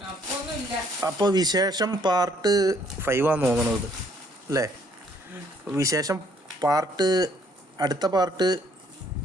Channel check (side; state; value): both; normal; correlation 0.65